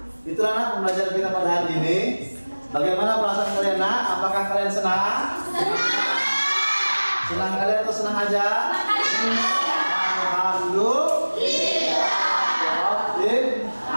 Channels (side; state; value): both; inverted; correlation -1.00